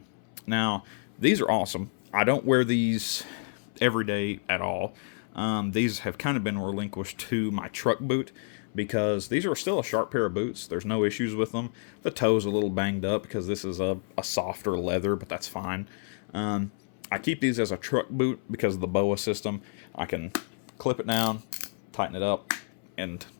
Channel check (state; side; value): silent; right; 58 dB below the other